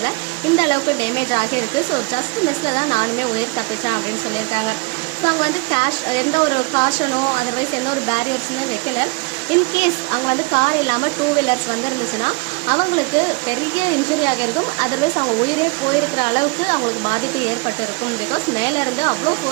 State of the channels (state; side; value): quieter; left; 29.6 dB